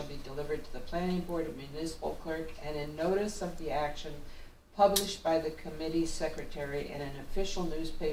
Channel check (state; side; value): identical; both; correlation 1.00